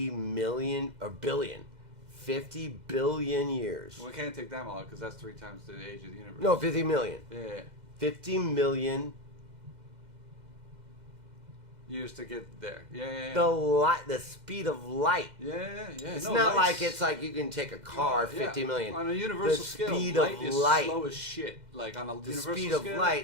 million or billion, 50 billion years. Well, we can't take that long because that's 3 times the age of the universe. No, 50 million. Yeah. 50 million. Years to get there. Yeah. The speed of light. Yeah. It's No, not light's- like it's like you can take a car 50 million. On a universal the scale, speed light of is light. slow as shit. Like on a The universal speed of scale,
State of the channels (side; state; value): left; late; 2.0 ms